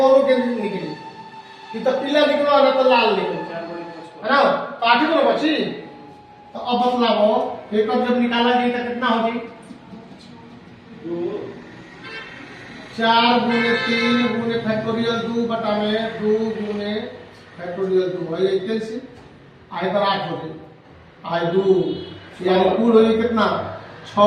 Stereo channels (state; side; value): identical; both; correlation 1.00